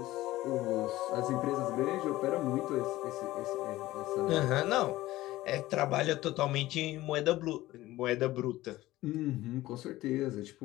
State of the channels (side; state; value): right; quieter; 16.9 dB